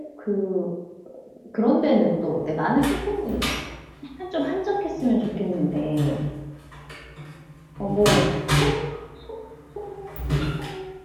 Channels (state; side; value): identical; both; correlation 1.00